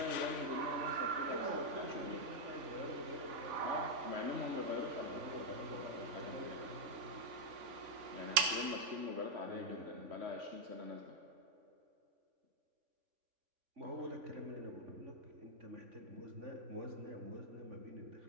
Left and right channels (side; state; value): left; late; 3.5 ms